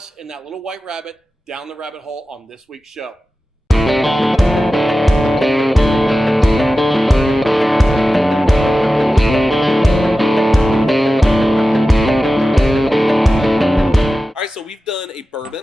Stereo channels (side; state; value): both; normal; correlation 0.94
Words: and that little white rabbit down the rabbit hole on this week's show. All right, so we've done a